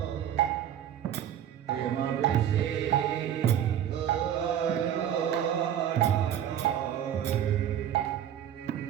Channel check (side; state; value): left; quieter; 10.2 dB